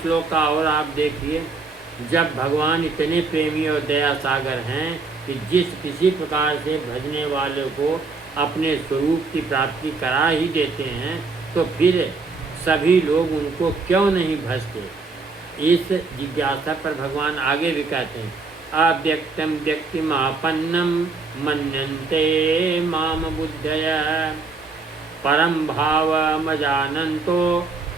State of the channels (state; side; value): quieter; left; 4.0 dB